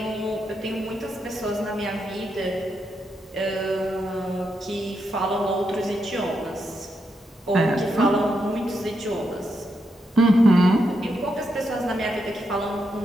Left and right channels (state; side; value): normal; both; correlation 0.82